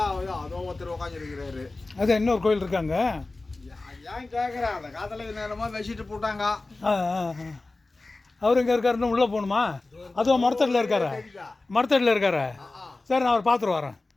அதோ ஒருத்தர் உட்காந்துருக்கிறாரு. அது இன்னொரு கோயில் இருக்காங்க. ஏன் கேட்குறேன், அந்த காலத்தில் நேரமாக வச்சுட்டு போட்டாங்க. அவர் எங்கே இருக்காருன்னு உள்ளே போகணுமா? அதுவும் மரத்தடியில் இருக்காரு. சரி, நான் அவர் பார்த்துட்டு வரேன்.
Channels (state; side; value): quieter; right; 3.2 dB